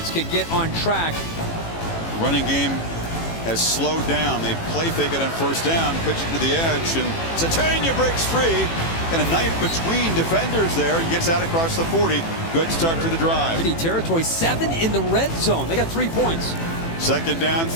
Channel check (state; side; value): late; right; 18 ms